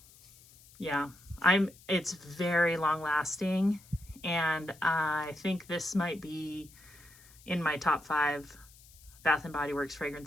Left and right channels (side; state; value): left; noise; hiss, 24 dB below the sound